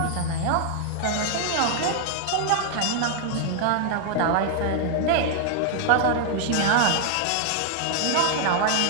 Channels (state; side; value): different; both; correlation 0.00